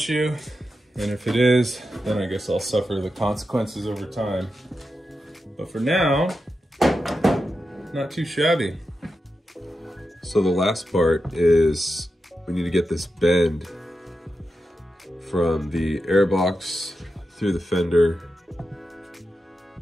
And if it is, then I guess I'll suffer the consequences over time. But for now, not too shabby. So the last part is we need to get this bend from the airbox through the fender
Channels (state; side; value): normal; both; correlation 0.89